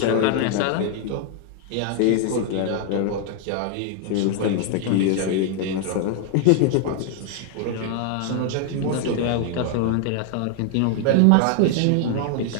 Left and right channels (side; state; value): both; different; correlation 0.00